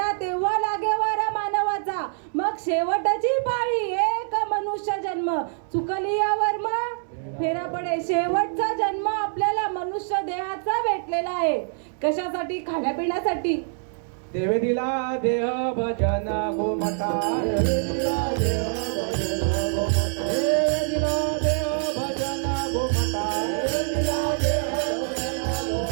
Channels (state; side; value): silent; left; digital silence